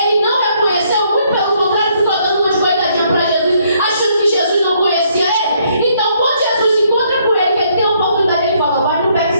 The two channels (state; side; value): inverted; both; correlation -0.69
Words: não reconheceu, muito pelo contrário, ficou dando uma coitadinha para Jesus, achando que Jesus não conhecia ele. Então, quando Jesus encontra com ele, que ele tem a oportunidade, ele fala: vai, não